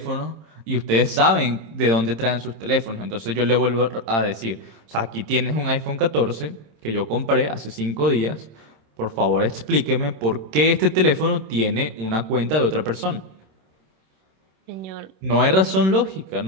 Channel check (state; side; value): late; left; 26 ms